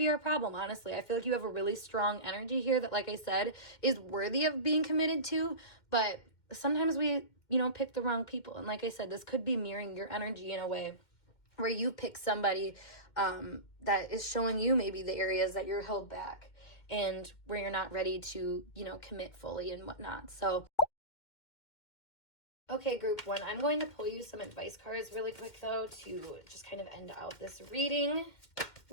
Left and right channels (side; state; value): right; late; 2.1 ms